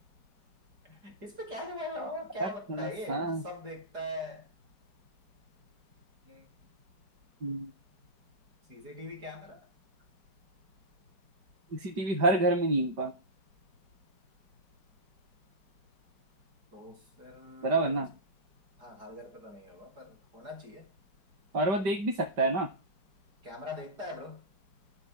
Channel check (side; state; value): left; late; 5.1 ms